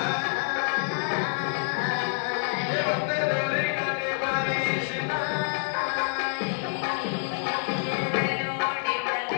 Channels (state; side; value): silent; right; digital silence